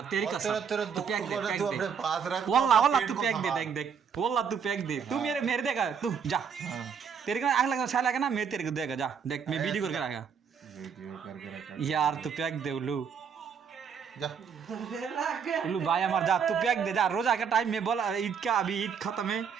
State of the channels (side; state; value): left; quieter; 6.8 dB